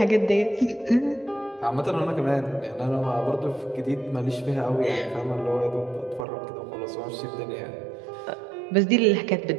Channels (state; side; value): drops out; left; at 6.2 s